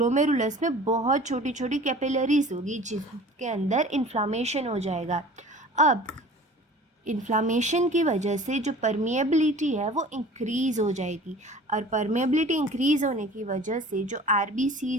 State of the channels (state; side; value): normal; both; correlation 0.44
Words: में बहुत छोटी छोटी कैपिलरीज होगी जिसके अंदर इन्फ्लामेशन हो जाएगा। अब इन्फ्लामेशन की वजह से जो परमिएबिलिटी है वो इंक्रीज़ हो जाएगी, और परमिएबिलिटी इंक्रीज़ होने की वजह से जो